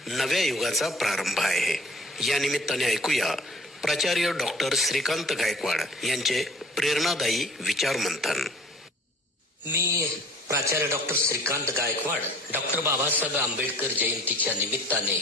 नव्या युगाचा प्रारंभ आहे. या निमित्ताने ऐकूया प्राचार्य डॉक्टर श्रीकांत गायकवाड यांचे प्रेरणादायी विचार मंथन. मी प्राचार्य डॉक्टर श्रीकांत गायकवाड डॉक्टर बाबासाहेब आंबेडकर जयंतीच्या निमित्ताने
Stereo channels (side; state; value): both; normal; correlation 0.50